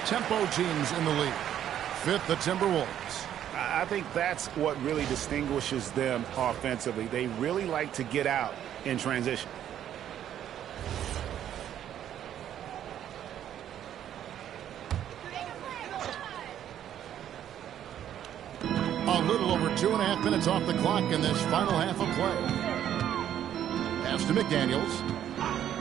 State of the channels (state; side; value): quieter; left; 10.6 dB